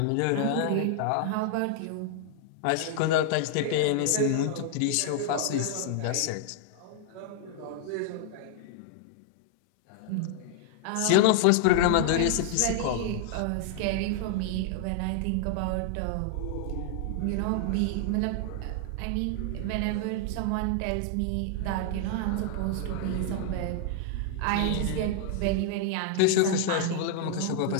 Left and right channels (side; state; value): both; different; correlation -0.01